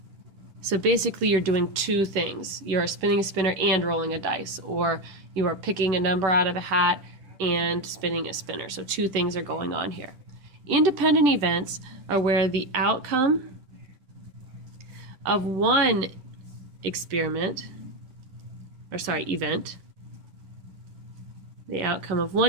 So basically, you're doing two things. You're spinning a spinner and rolling a dice, or you are picking a number out of a hat and spinning a spinner. So two things are going on here. Independent events are where the outcome of one event, the outcome of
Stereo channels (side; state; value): left; late; 10 ms